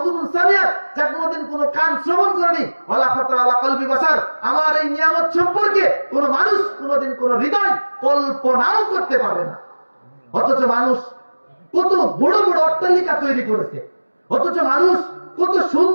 সামিআত, যা কোনোদিন কোনো কান শ্রবণ করেনি, ওয়ালা খাতারা আলা কলবি বাসার, আমার এই নিয়ামত সম্পর্কে কোনো মানুষ কোনোদিন কোনো হৃদয় কল্পনাও করতে পারে না। অথচ মানুষ কত বড় বড় অট্টালিকা তৈরি করেছে, অথচ মানুষ কত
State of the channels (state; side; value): inverted; both; correlation -1.00